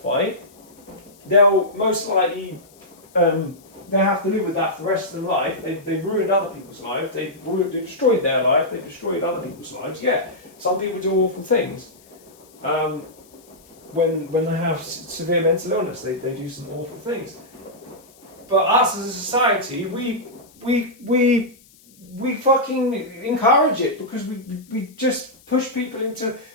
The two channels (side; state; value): left; noise; hiss, 27 dB below the sound